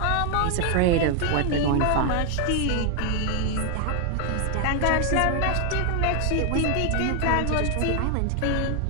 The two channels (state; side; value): different; both; correlation 0.00